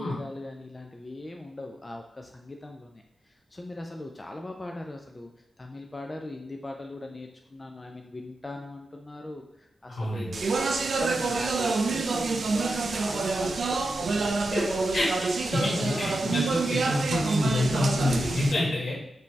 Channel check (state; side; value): normal; both; correlation 0.89